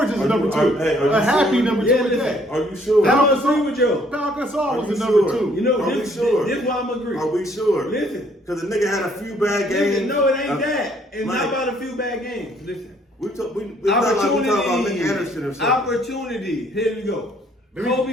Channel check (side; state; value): both; normal; correlation 0.64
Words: is a number 2. Are you a happy sure? number 2 Yeah, is listen. that. Are you sure? I don't agree with you. Pau Gasol Are was you the number sure? 2. You know, Are we this sure? is why I'm agreeing. Are we sure? Listen. Because the nigga had a few bad games. No, it ain't that. It's Mike, not about a few bad games. Listen. We talk about Nick Anderson or something. Opportunity. Here we go.